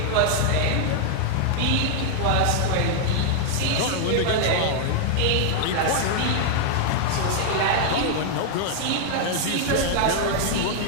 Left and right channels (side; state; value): both; different; correlation 0.00